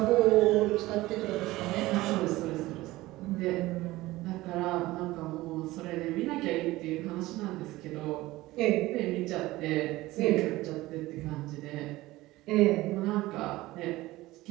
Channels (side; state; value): left; quieter; 18.3 dB